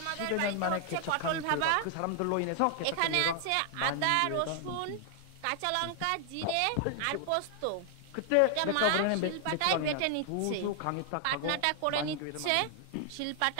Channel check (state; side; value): different; both; correlation 0.00